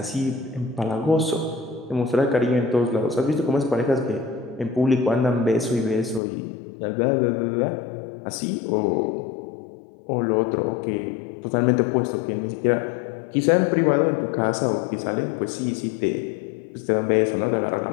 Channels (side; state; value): right; drops out; at 6.2 s